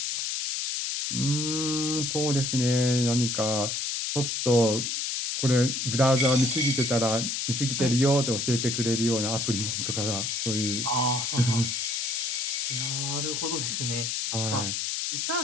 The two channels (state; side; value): noise; left; hiss, 1 dB below the sound